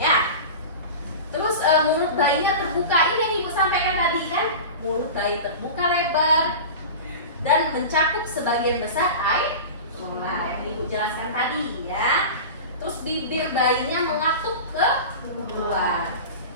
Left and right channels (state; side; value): inverted; both; correlation -0.30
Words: Terus mulut bayinya terbuka, ini yang ibu sampaikan tadi kan, mulut bayi terbuka lebar dan mencakup sebagian besar air kola yang ibu jelaskan tadi, ya. Terus bibir bayinya mengatuk ke luar,